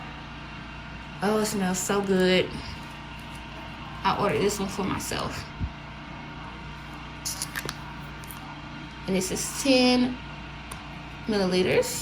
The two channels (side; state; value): both; identical; correlation 1.00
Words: Oh, it smells so good. I ordered this one for myself. And this is 10